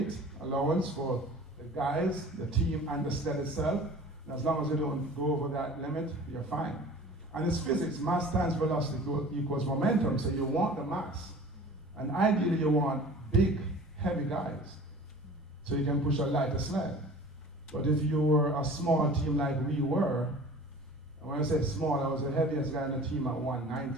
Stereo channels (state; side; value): normal; both; correlation 0.43